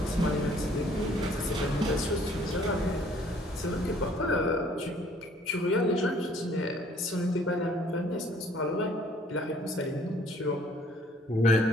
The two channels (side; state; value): both; normal; correlation 0.58